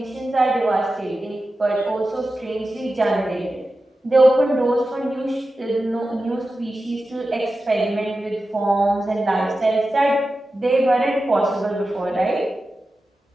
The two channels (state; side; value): normal; both; correlation 0.93